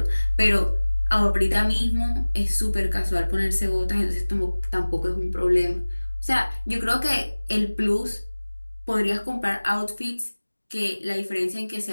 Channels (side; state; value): both; inverted; correlation -1.00